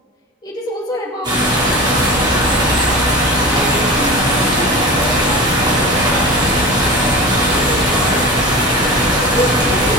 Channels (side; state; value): both; normal; correlation 0.31